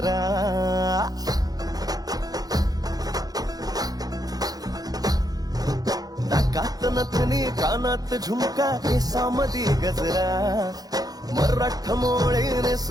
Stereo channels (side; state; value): left; late; 0.18 ms